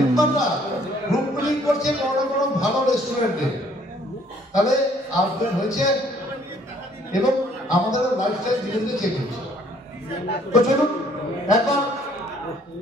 গ্রুপ মিটিং করছে বড় বড় ভালো রেস্টুরেন্টে। তাহলে আপডেট হয়েছে এবং আমাদের লাইফস্টাইল ধীরে ধীরে চেঞ্জ হচ্ছে। তো চলুন একবার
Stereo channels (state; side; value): normal; both; correlation 0.61